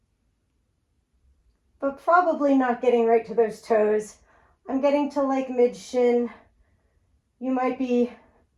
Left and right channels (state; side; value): identical; both; correlation 1.00